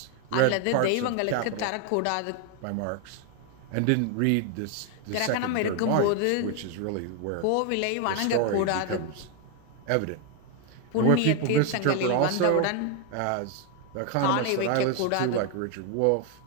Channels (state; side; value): different; both; correlation 0.01